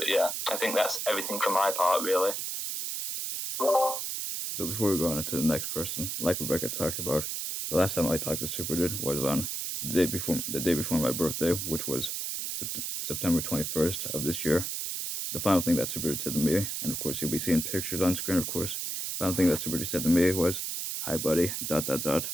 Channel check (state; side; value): noise; right; hiss, 3 dB below the sound